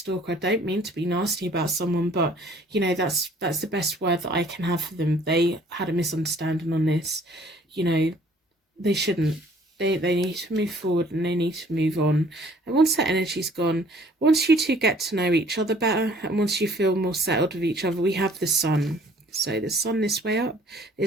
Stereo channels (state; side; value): normal; both; correlation 0.57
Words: I don't mean to be nasty about someone, but you know, that's the best word that I can have for them. They had a misunderstanding on this. You know, they shouldn't. They need to move forward and they need to move on. And once that energy's gone, once you two get to know each other better, and once you feel more settled with each other, we have the Sun. So the Sun this way up